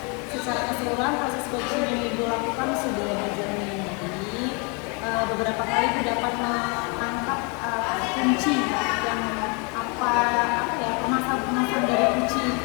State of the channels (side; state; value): right; quieter; 32.7 dB